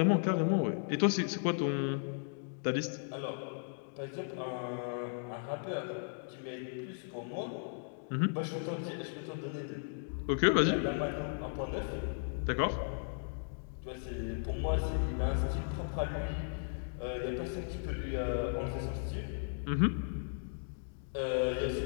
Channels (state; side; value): silent; right; digital silence